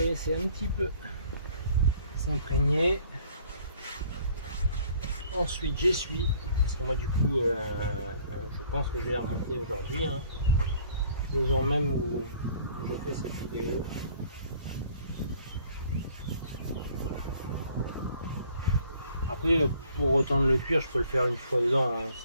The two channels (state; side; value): inverted; both; correlation -0.57